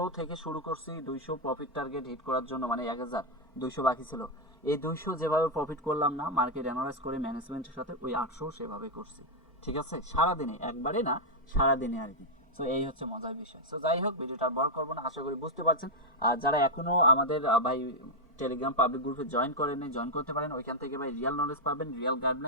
থেকে শুরু করছি 200 প্রফিট টার্গেট হিট করার জন্য, মানে 1200 বাকি ছিল, এই 200 যেভাবে প্রফিট করলাম না মার্কেট অ্যানালাইজ করে ম্যানেজমেন্টের সাথে, ওই 800 সেভাবে করছি, ঠিক আছে? সারাদিনে, একবারে না, সারাদিনে আর কি। সো এই হচ্ছে মজার বিষয়। সো যাই হোক, ভিডিওটা আর বড় করবো না, আশা করি বুঝতে পারছেন। আর যারা এখনো আমাদের ভাই টেলিগ্রাম পাবলিক গ্রুপে জয়েন করেন, জয়েন করতে পারেন। ওইখান থেকে ভাই রিয়েল নলেজ পাবেন, রিয়েল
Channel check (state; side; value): normal; both; correlation 0.00